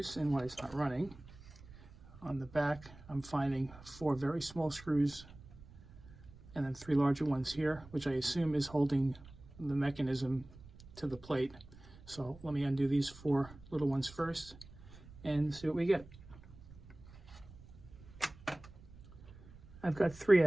and why it's not running. On the back, I'm finding 4 very small screws and then 3 larger ones here, which I assume is holding the mechanism to the plate. So let me undo these 4 little ones first and see what we get. I've got 3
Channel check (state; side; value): noise; right; rumble, 19 dB below the sound